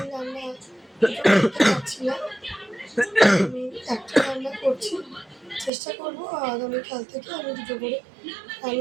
রান্না করতে পারছি না। আমি একটা রান্না করছি, চেষ্টা করবো আগামীকাল থেকে আমি দুটো করে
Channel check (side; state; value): left; drops out; at 5.7 s